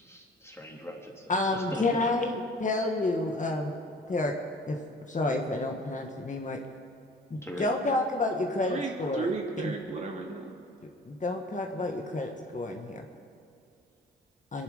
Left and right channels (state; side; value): normal; both; correlation 0.48